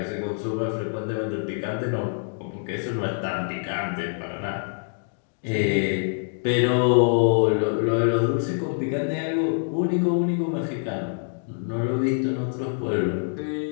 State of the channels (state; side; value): silent; right; digital silence